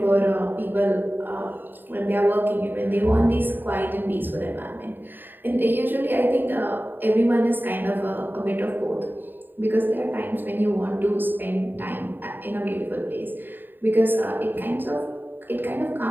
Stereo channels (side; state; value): left; late; 0.093 ms